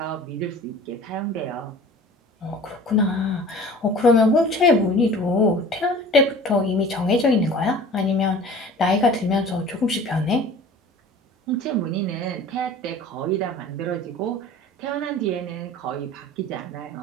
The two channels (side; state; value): both; normal; correlation 0.43